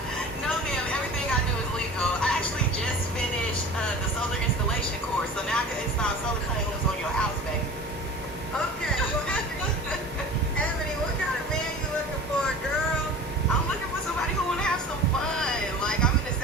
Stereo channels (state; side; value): normal; both; correlation 0.39